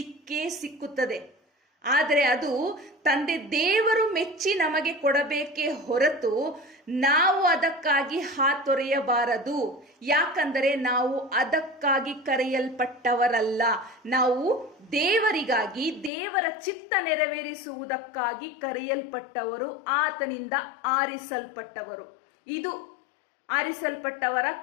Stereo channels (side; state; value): right; drops out; at 16.1 s